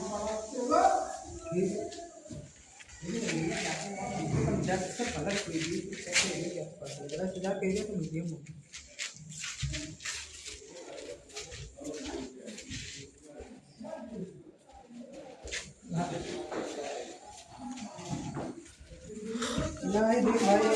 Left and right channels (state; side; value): identical; both; correlation 1.00